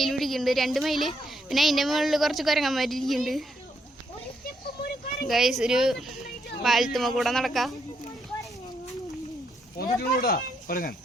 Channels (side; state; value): both; normal; correlation 0.76